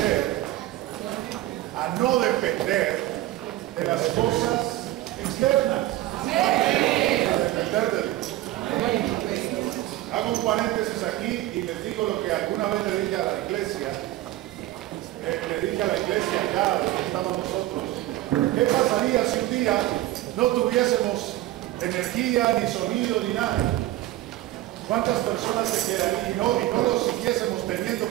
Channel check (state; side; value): quieter; left; 15.8 dB